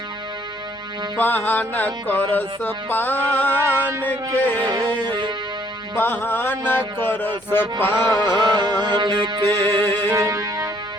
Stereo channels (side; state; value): left; noise; hum, 29 dB below the sound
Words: बहाना करस पान के, बहाना करस पान के।